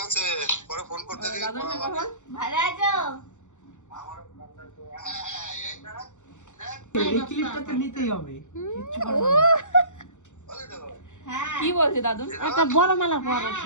আছে, পরে ফোন করতে দিই। দাদুর সঙ্গে কথা বল। ভালো আছো? এই ক্লিপটা তো নিতেই হবে। হ্যাঁ কি বলছে দাদু? একটা বড় মালা পর ওর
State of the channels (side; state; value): right; late; 0.85 ms